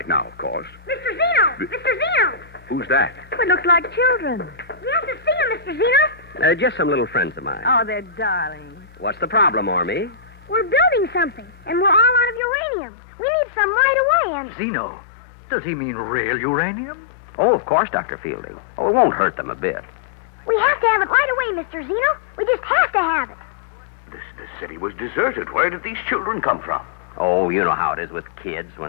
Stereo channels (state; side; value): drops out; right; at 12.4 s